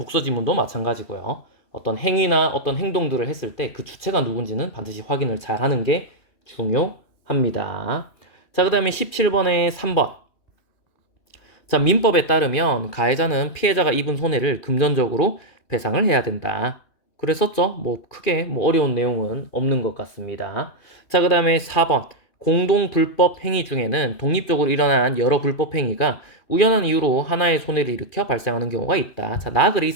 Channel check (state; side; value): late; right; 2.4 ms